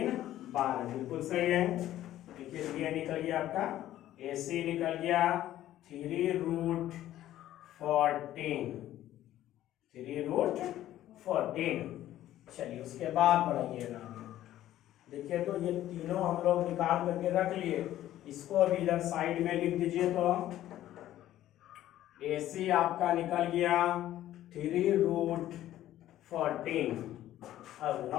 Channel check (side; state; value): right; quieter; 13.3 dB